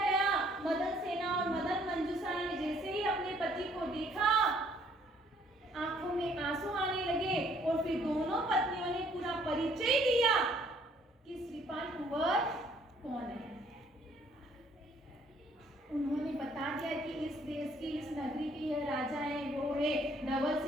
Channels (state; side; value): normal; both; correlation 0.63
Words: मदन सेना और मदन मंजूषा ने जैसे ही अपने पति को देखा, आंखों में आंसू आने लगे और फिर दोनों पत्नियों ने पूरा परिचय दिया कि श्रीपाल कुंवर कौन है। उन्होंने बता दिया कि इस देश की, इस नगरी की यह राजा है, वो है। धवल